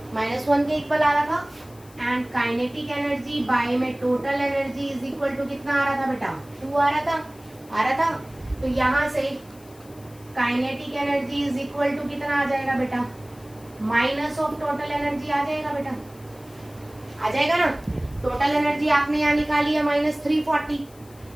-1 के इक्वल आ रहा था, एंड काइनेटिक एनर्जी बाय में total energy is equal to कितना आ रहा था बेटा, 2 आ रहा था। तो यहाँ से kinetic energy is equal to कितना आ जाएगा बेटा, माइनस ऑफ टोटल एनर्जी आ जाएगा बेटा, आ जाएगा ना। टोटल एनर्जी आपने यहाँ निकाली है -340,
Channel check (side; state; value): left; noise; hiss, 25 dB below the sound